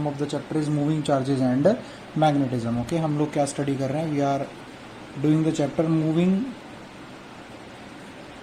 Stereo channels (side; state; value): both; identical; correlation 1.00